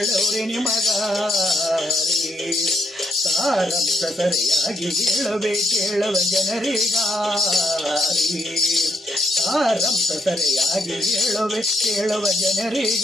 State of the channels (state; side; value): normal; both; correlation 0.76